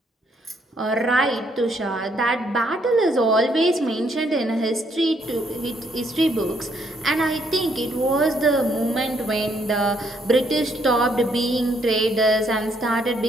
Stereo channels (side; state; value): both; normal; correlation 0.71